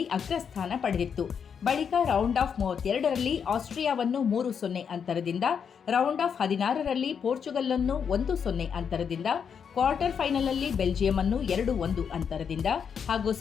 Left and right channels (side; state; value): right; quieter; 7.0 dB